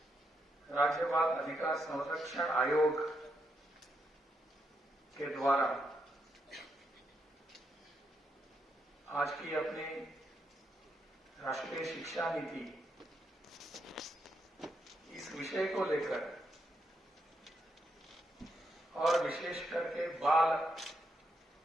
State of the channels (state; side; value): normal; both; correlation 0.80